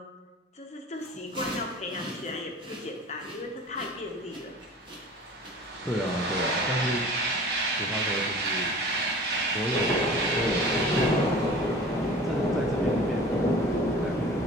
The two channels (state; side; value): normal; both; correlation 0.42